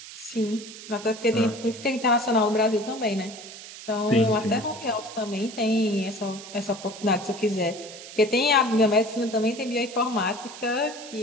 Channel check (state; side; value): noise; right; hiss, 14 dB below the sound